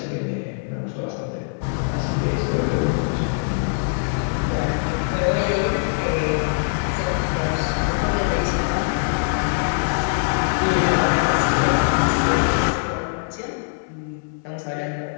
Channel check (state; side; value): silent; right; 64 dB below the other